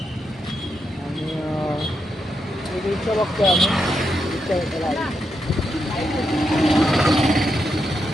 आणि रिक्षा बघतोय आम्ही.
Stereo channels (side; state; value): both; normal; correlation 0.83